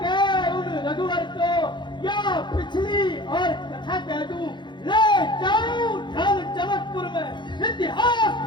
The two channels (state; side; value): late; right; 0.22 ms